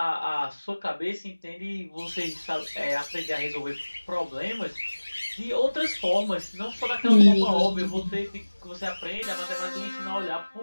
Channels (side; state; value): both; inverted; correlation -1.00